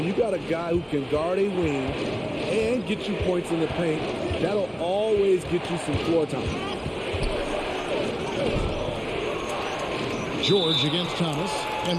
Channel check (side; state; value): both; identical; correlation 1.00